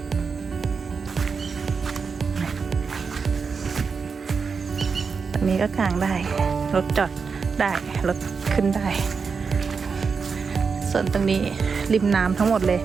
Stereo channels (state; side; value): quieter; left; 5.4 dB